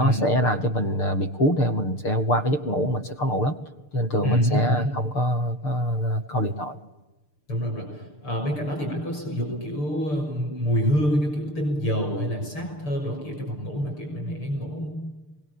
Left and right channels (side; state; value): right; late; 6.7 ms